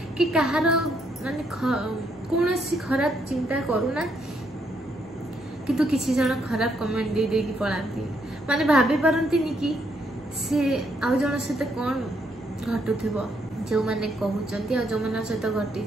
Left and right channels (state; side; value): normal; both; correlation 0.74